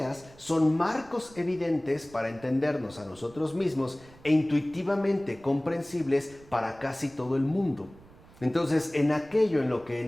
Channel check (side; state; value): right; noise; rumble, 24 dB below the sound